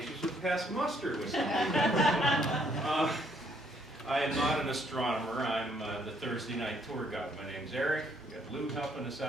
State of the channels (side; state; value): both; normal; correlation 0.68